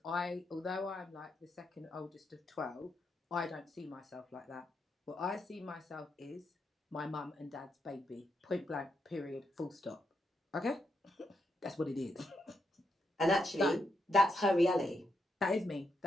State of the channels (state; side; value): normal; both; correlation 0.82